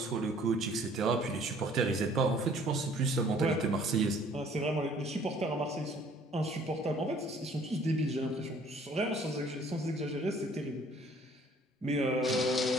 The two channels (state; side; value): normal; both; correlation 0.56